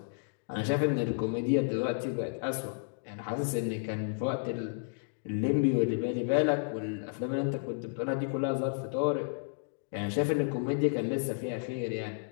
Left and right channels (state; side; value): silent; right; digital silence